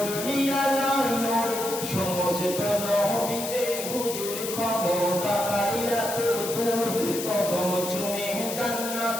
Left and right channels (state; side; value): noise; left; hiss, 6 dB below the sound